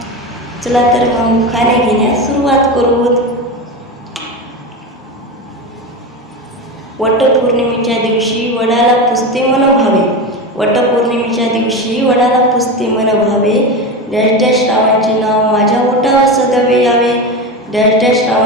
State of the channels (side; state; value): both; normal; correlation 0.22